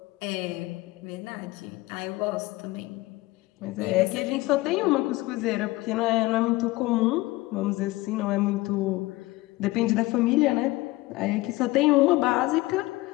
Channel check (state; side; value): quieter; right; 19.9 dB